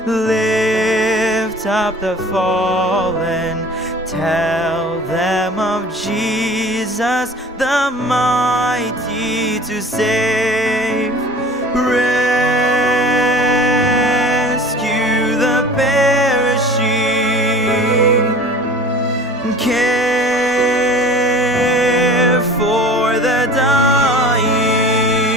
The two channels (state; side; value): normal; both; correlation 0.43